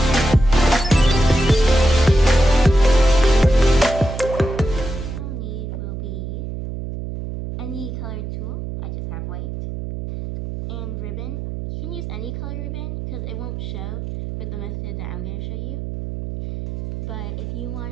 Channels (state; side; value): noise; right; hum, 7 dB below the sound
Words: Any colored tulle, I just have white, and ribbon. You can use any color ribbon because it won't show with the method that I'm going to show you. But if you